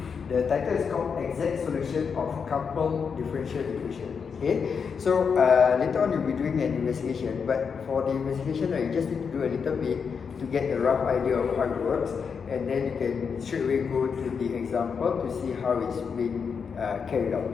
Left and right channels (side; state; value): right; quieter; 6.1 dB